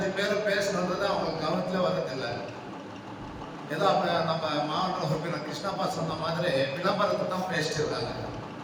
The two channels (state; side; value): identical; both; correlation 1.00